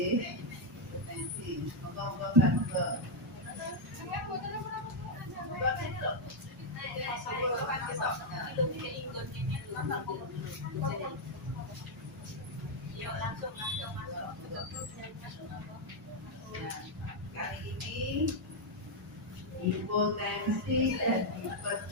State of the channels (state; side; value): normal; both; correlation 0.00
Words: hipertensi. Moga-moga kan moga. Yuk langsung masuk. Ya, kali ini hipotensi dan